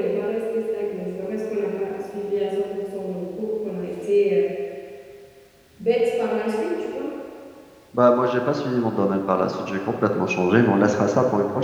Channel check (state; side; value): identical; both; correlation 1.00